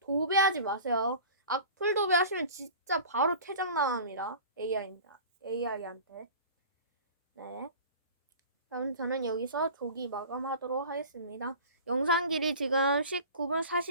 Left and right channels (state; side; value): inverted; both; correlation -0.39